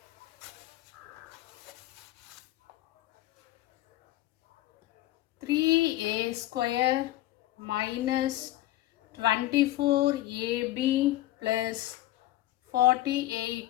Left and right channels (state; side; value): quieter; right; 15.6 dB